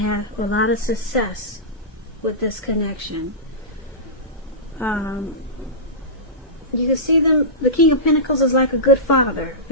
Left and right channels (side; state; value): both; normal; correlation -0.17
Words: a lot of success with this connection. You can see them, the King of Pentacles is like a good father,